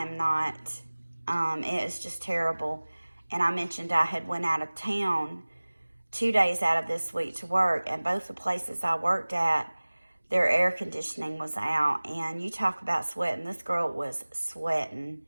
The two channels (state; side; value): inverted; both; correlation -1.00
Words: not. It is just terrible. And I mentioned I had went out of town 2 days out of this week to work, and both the places I worked at, their air conditioning was out. And you talk about sweating, this girl was sweating.